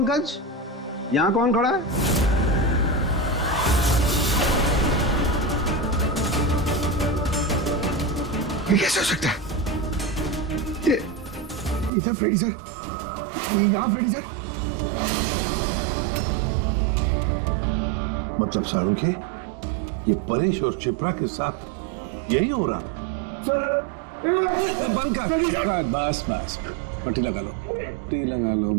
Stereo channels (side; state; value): left; drops out; at 11.9 s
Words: यहां कौन खड़ा है? ये कैसे हो सकता है? ये इधर फ्रेडी सर, यहां फ्रेडी सर। मतलब शाहरुख है, ये परेश और शिप्रा के साथ यही हो रहा? पंकज, बस बस, पट्टी लगा लो, पट्टी लगा लो